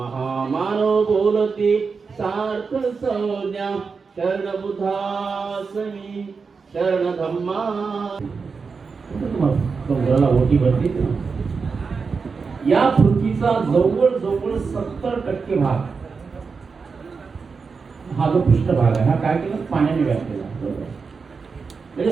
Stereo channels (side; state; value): left; quieter; 5.0 dB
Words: बोलती सार्थ संज्ञा शरण बुद्धासमी शरण धम्मा डोंगराला ओटी भरते. या पृथ्वीचा जवळजवळ 70% भाग हा जो पृष्ठभाग आहे हा काय केला पाण्याने व्यापलेला. म्हणजे